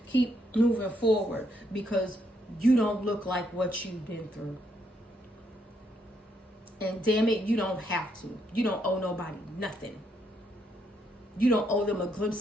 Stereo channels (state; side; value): normal; both; correlation 0.75